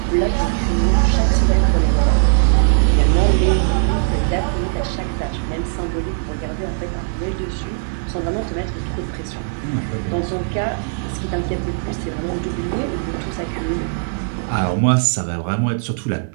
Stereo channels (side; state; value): left; silent; digital silence